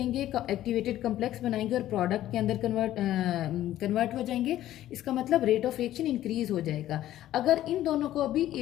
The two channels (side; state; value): right; quieter; 13.4 dB